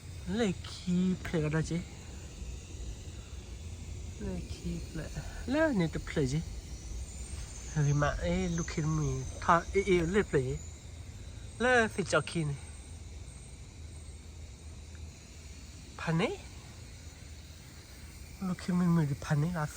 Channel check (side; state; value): both; identical; correlation 1.00